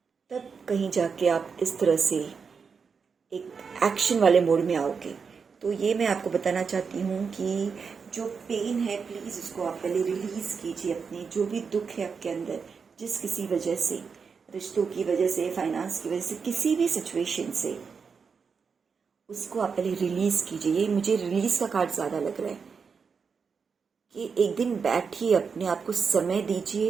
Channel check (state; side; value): quieter; left; 5.7 dB